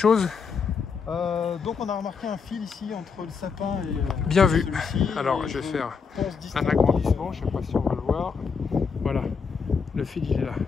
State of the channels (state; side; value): quieter; right; 5.6 dB